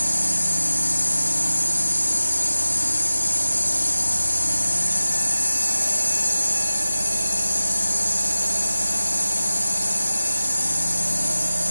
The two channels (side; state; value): both; inverted; correlation -0.97